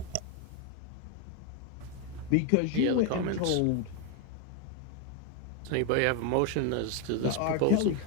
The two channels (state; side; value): different; both; correlation 0.01